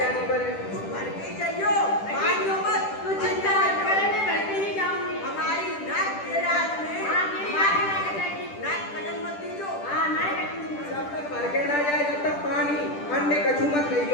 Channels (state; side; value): late; right; 10 ms